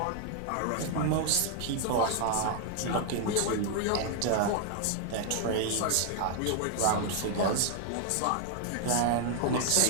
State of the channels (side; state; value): both; different; correlation 0.00